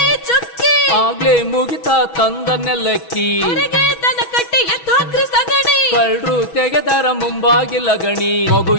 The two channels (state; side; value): late; right; 6.2 ms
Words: ಆಗ್ಲೇ ಮುಗಿತಾ ತಂದ ನೆಲಕ್ಕಿ ದನ ಕಟ್ಟಿ ಎತ್ತಾಕ್ರಿ ಸಗಣಿ ಕಳ್ರು ತೆಗೆದರ ಮುಂಬಾಗಿಲ ಗಣಿ ಮಗು